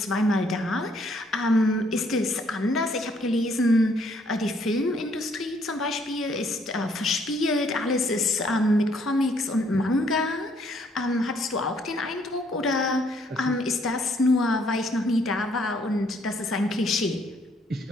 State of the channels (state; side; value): normal; both; correlation 0.66